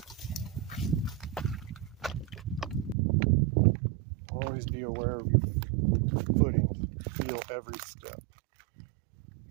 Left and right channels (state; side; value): drops out; left; at 3.0 s